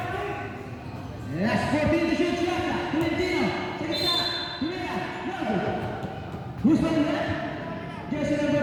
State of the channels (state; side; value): identical; both; correlation 1.00